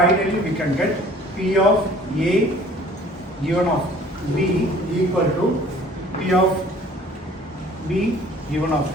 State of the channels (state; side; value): normal; both; correlation 0.52